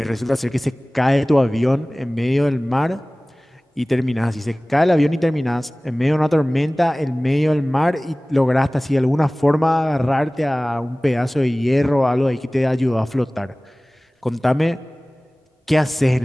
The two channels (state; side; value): normal; both; correlation 0.98